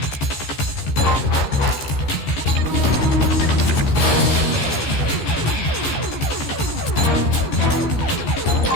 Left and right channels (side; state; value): right; late; 14 ms